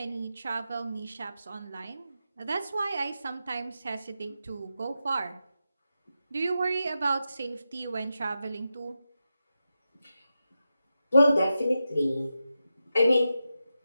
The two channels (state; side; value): inverted; both; correlation -0.89